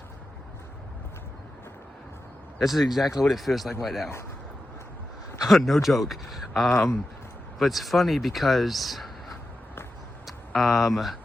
This is exactly what it feels like right now. No joke. But it's funny because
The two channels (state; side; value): normal; both; correlation 0.91